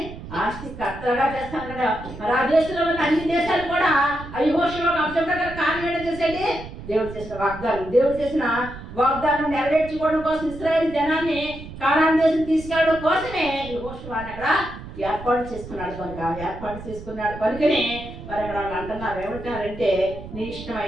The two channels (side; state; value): right; noise; rumble, 13 dB below the sound